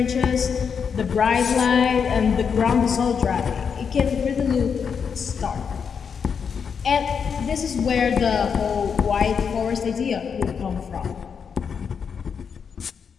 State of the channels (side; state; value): right; quieter; 6.5 dB